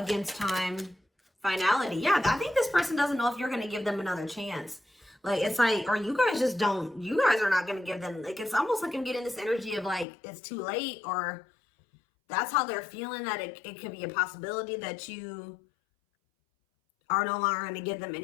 against time, finality. Yeah, I think this person doesn't know if you're going to give them another chance. Like, it's like, or you guys just don't, you guys are not going to give them, like, it's almost like I'm getting this energy of like, it's too late, or that's how they're feeling, that it could be a possibility that you are no longer going to give them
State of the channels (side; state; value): right; drops out; at 10.1 s